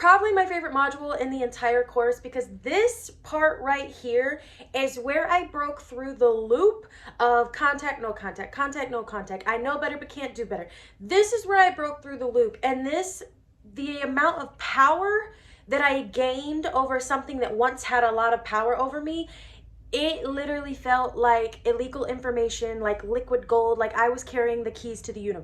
my favorite module in the entire course because this part right here is where I broke through the loop of contact, no contact, contact, no contact. I know better but can't do better. This is where I broke through the loop, and the amount of power that I gained over something that once had a lot of power over me, it literally felt like illegal information, like liquid gold, like I was carrying the keys to the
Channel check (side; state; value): both; identical; correlation 1.00